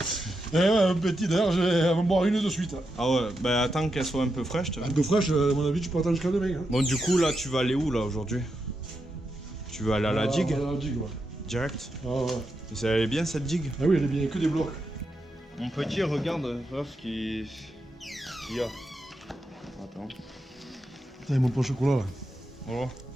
Eh ouais, un petit, d'ailleurs, je vais en boire une de suite. Ah ouais, bah attends qu'elle soit un peu fraîche. Un peu fraîche, à mon avis, tu peux attendre jusqu'à demain. Hein. Bon, du coup, là, tu vas aller où, là, aujourd'hui? Tu vas aller à la digue? À la digue, ouais. Direct? Ah ouais. Et ça allait bien, cette digue? Ah oui, elle est bien, que des blocs. Mon petit, regarde ce qu'il y a. Attends. Putain, mon pain au chocolat, là. Voilà.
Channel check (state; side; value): normal; both; correlation 0.85